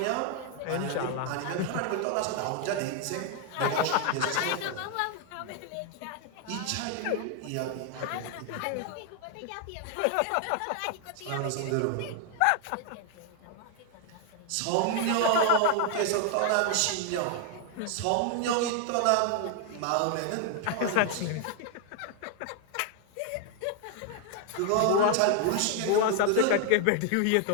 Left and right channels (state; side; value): different; both; correlation 0.00